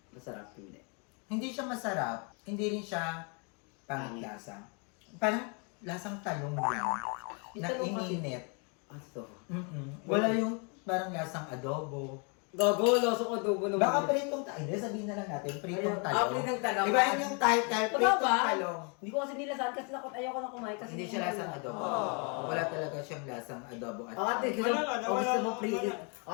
Masarap hindi. Hindi siya masarap, hindi rin siya panglasa. Parang lasang talong lang. Yung Na talong kasi- ininit. Aso. Wala yung parang lasang adobo. Gago, loso ko adobo naman. Baka pritong talong. Hindi, sabihin na lang natin, pritong Ayun. talong. Pritong talong. Iba yun yung title, Totoo pritong ba? talong. Hindi ko kasi nilasahan kasi ayoko na kumain kasi Hindi siya lasang adobo. Wala talaga siyang lasang adobo at Ate, gusto Wala, mo wala. pre.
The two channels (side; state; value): right; quieter; 35.9 dB